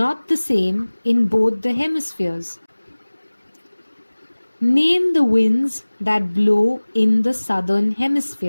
the same in both the hemispheres? Name the winds that blow in the southern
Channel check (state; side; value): inverted; both; correlation -1.00